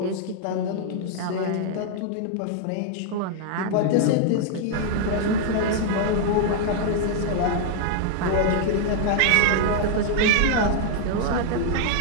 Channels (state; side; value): different; both; correlation 0.00